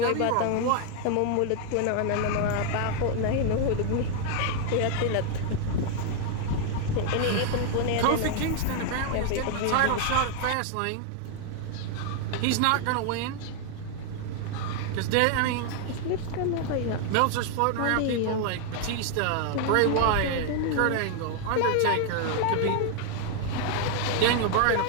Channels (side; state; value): both; different; correlation 0.00